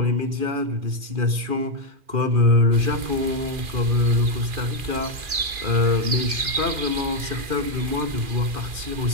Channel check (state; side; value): late; left; 2.4 ms